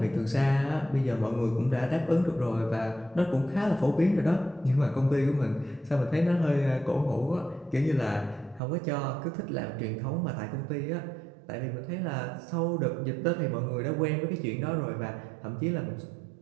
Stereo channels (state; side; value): drops out; left; at 8.6 s